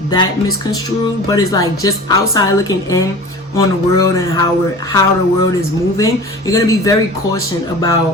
that misconstrued, but it's like just outside looking in on the world and how the world is moving. You're gonna be very cautious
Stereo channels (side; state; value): both; normal; correlation 0.38